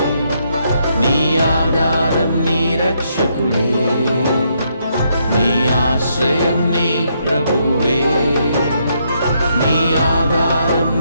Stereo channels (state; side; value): inverted; both; correlation -0.75